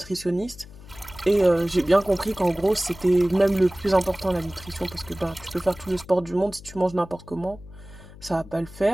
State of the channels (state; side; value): noise; left; hum, 19 dB below the sound